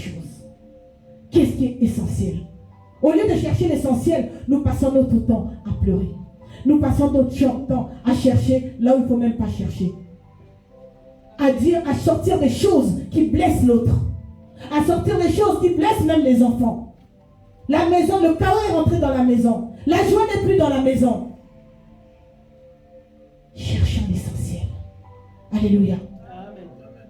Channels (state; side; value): identical; both; correlation 1.00